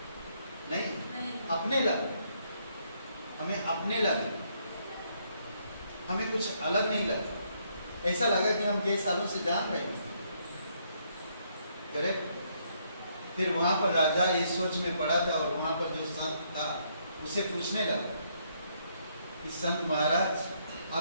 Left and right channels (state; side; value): inverted; both; correlation -0.72